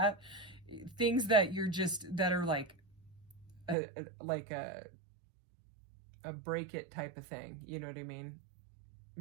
Things that that are like a break it type of thing. You know what I mean?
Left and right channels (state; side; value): drops out; left; at 3.8 s